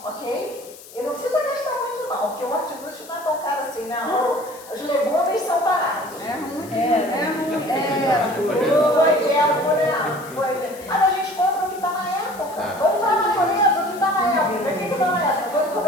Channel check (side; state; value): left; noise; hiss, 19 dB below the sound